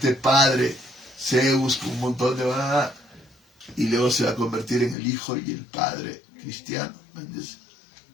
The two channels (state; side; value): drops out; right; at 5.0 s